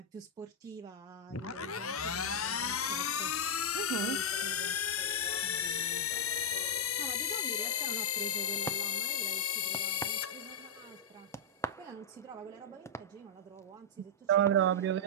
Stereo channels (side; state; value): both; normal; correlation -0.06